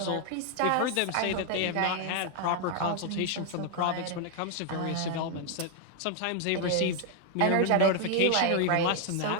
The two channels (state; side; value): different; both; correlation 0.00